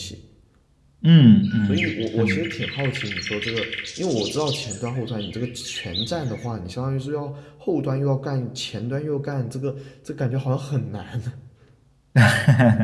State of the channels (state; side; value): identical; both; correlation 1.00